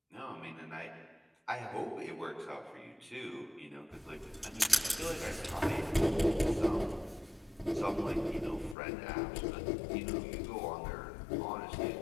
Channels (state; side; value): drops out; right; at 8.8 s